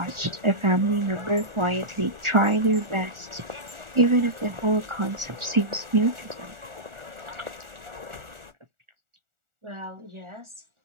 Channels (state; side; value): late; left; 1.4 ms